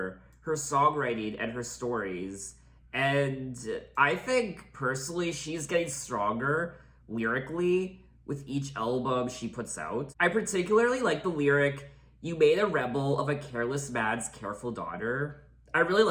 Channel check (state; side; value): identical; both; correlation 1.00